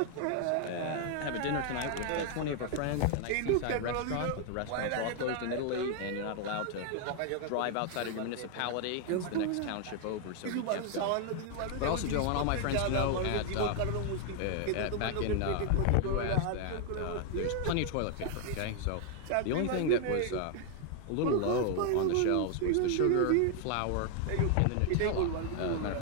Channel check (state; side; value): different; both; correlation 0.00